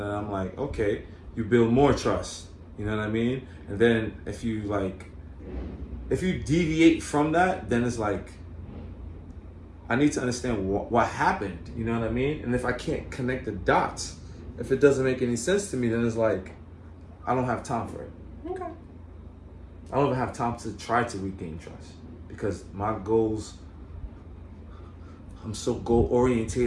I'm like, okay, you build more trust. You know what I mean? And then if you deviate from that, then it's like, I need to understand what happened. You know what I mean? And if I can't connect the dots, if it doesn't make any sense to me, then it's like, I don't have time for it. Okay. I don't even have time to try to regain trust, because my goals, I'm so goal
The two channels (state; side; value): identical; both; correlation 1.00